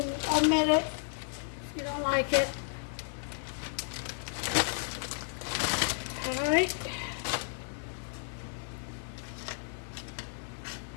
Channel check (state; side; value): silent; right; digital silence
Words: omit it if you don't like it. Alright.